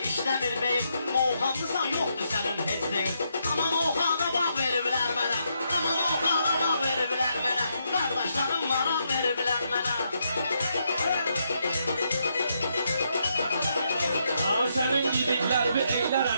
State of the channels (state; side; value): inverted; both; correlation -0.78